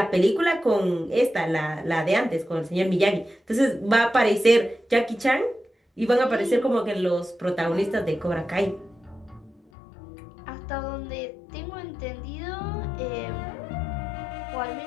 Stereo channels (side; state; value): right; drops out; at 9.6 s